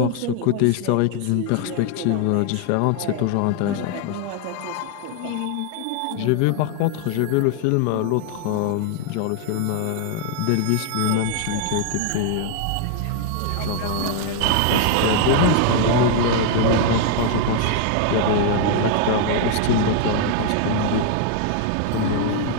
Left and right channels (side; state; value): both; different; correlation 0.00